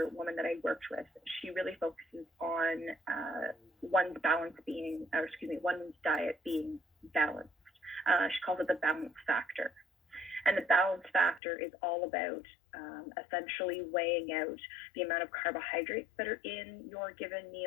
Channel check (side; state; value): right; drops out; at 11.4 s